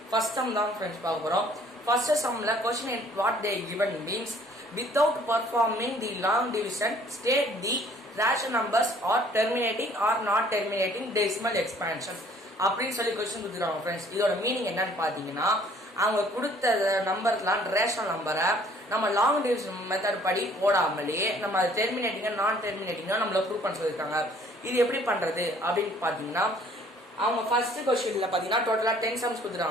first sum தான் friends பார்க்க போறோம். First sumல question in what they given means without performing the long division state the rational numbers or terminating or not terminating decimal expansion அப்படின்னு சொல்லி question கொடுத்துறாங்க friends. இதோட meaning என்னன்னு பாத்தீங்கன்னா அவங்க கொடுத்த நம்பர்லாம் ரேஷனல் நம்பரை நம்ம லாங் டிவிஷன் மெத்தட் படி போடாமலே நம்ம அது டெர்மினேட்டிங்கா நான் டெர்மினேட்டிங்கா நம்மள ப்ரூவ் பண்ண சொல்லியிருக்காங்க. இது எப்படி பண்றது அப்படின்னு பாத்தீங்கன்னா அவங்க ஃபர்ஸ்ட் क्वेश्चनல பாத்தீங்கன்னா டோட்டலா 10 சம்ஸ்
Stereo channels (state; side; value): normal; both; correlation 0.57